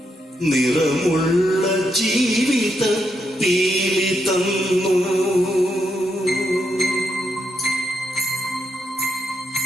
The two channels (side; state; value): both; normal; correlation 0.81